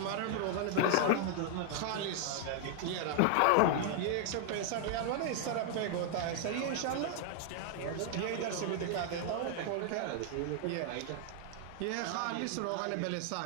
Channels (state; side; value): different; both; correlation 0.00